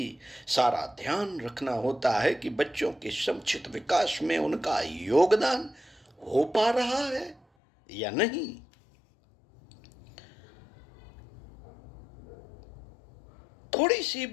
सारा ध्यान रखना होता है कि बच्चों के समुचित विकास में उनका योगदान हो पा रहा है या नहीं। थोड़ी सी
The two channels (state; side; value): drops out; right; at 7.4 s